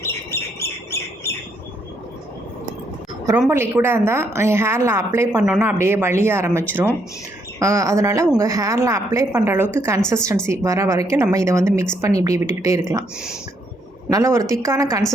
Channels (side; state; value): both; normal; correlation 0.73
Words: ரொம்ப லிக்விடாக இருந்தால் ஹேரில் அப்ளை பண்ணோன்னா அப்படியே வலிய ஆரம்பிச்சிரும். அதனால் உங்கள் ஹேரில் அப்ளை பண்ணுற அளவுக்கு கன்சிஸ்டன்சி வர வரைக்கும் நம்ம இதை வந்து மிக்ஸ் பண்ணி இப்படி விட்டுக்கிட்டே இருக்கலாம். நல்ல ஒரு திக்கான